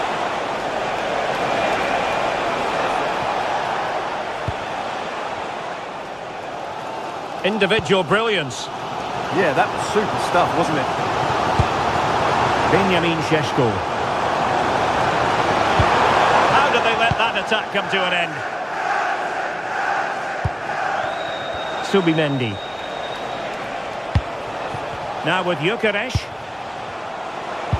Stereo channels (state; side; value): identical; both; correlation 1.00